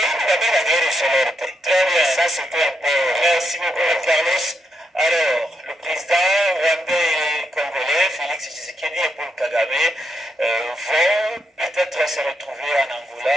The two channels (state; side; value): normal; both; correlation 0.80